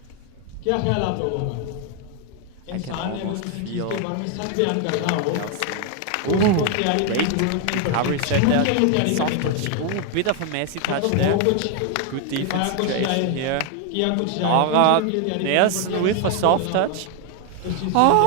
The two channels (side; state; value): both; different; correlation 0.01